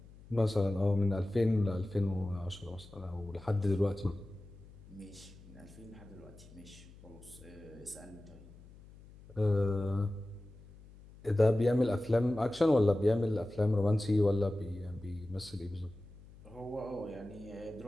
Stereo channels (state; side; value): noise; left; hum, 21 dB below the sound